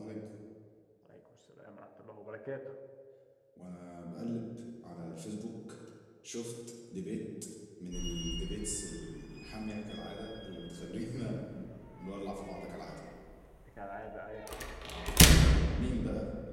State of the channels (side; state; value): both; identical; correlation 1.00